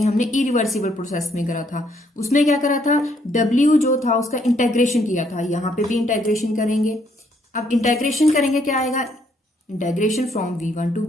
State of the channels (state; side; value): normal; both; correlation 0.70